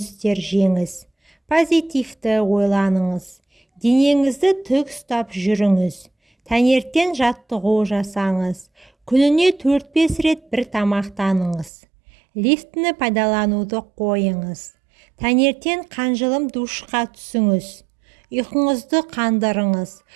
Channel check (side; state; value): left; drops out; at 11.7 s